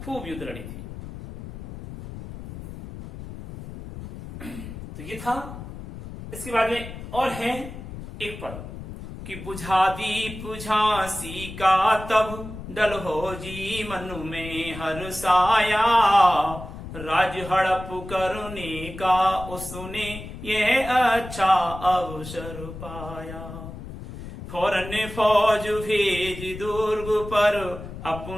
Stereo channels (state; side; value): noise; left; rumble, 11 dB below the sound